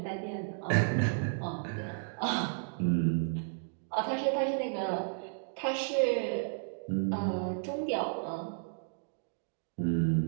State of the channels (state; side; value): silent; left; digital silence